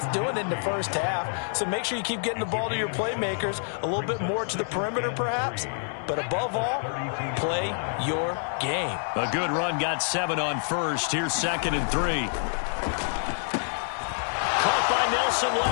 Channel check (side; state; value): right; silent; digital silence